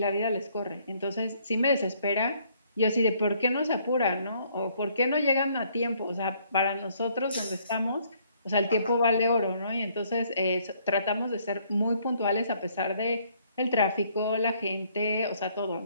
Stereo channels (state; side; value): inverted; both; correlation -0.65